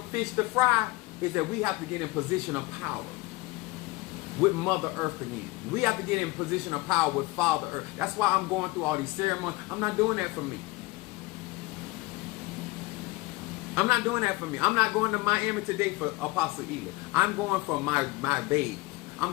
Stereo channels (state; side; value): quieter; right; 22.8 dB